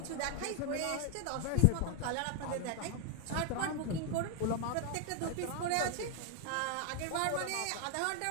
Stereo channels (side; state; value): both; different; correlation 0.00